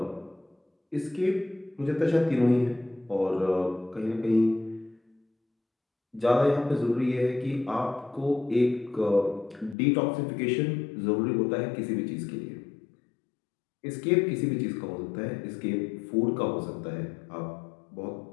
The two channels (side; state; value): right; drops out; at 9.8 s